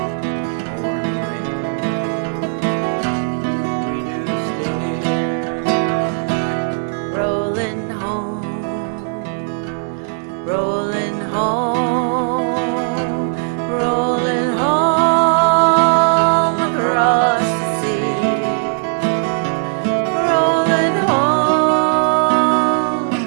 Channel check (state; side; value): silent; left; 58 dB below the other